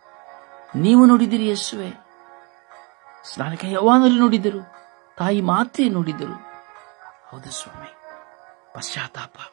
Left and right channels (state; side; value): quieter; left; 30.1 dB